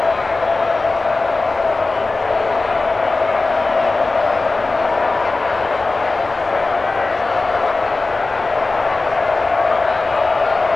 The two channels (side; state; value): right; quieter; 3.5 dB